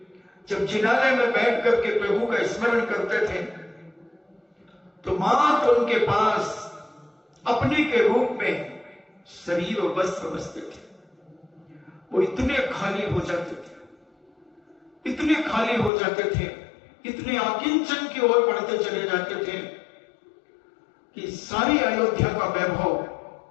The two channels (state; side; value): drops out; right; at 15.9 s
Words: जब जिनालय में बैठ करके प्रभु का स्मरण करते थे तो मात्र उनके पास अपने के रूप में शरीर और वस्त्र बसते थे। वो इतने खाली हो जाते थे, इतने खाली हो जाते थे, इतने आकिंचन की ओर बढ़ते चले जाते थे कि सारी अयोध्या का वैभव,